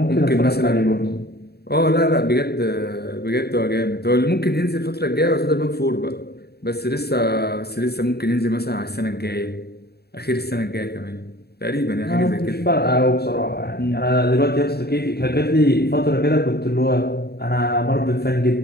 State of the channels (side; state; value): right; late; 0.47 ms